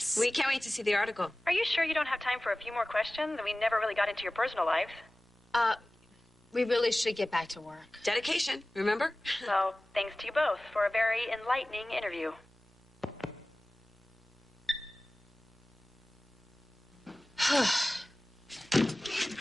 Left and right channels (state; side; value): normal; both; correlation 0.97